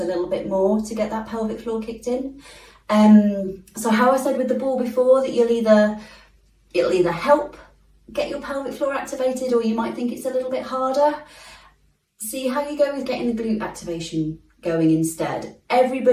a little bit more to get that pelvic floor kicked in. So how I said with the ball before, that it'll either help get your pelvic floor activated, or you might think it's a little bit harder. See how you go with getting the glute activation going instead.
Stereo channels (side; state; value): both; identical; correlation 1.00